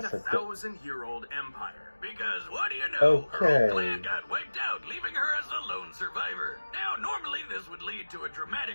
a a sister. 1,000-year-old empire. Because what do you know? Her Okay. whole clan got wiped out, leaving her as the lone survivor. Now, normally this would lead to a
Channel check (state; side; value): inverted; both; correlation -1.00